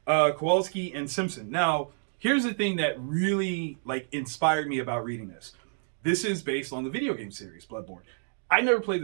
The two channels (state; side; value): silent; left; digital silence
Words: Kowalski, and Simpson. Now, here's the thing that really inspired me about reading this. This is based on the video game series, Bloodborne. I never played